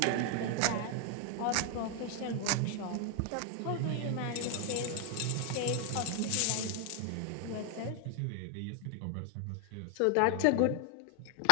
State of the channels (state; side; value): different; both; correlation 0.00